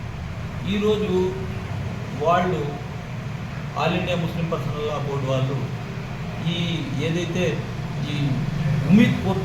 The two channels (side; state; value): both; identical; correlation 1.00